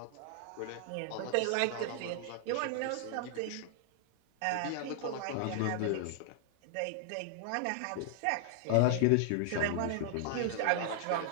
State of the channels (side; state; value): both; different; correlation 0.00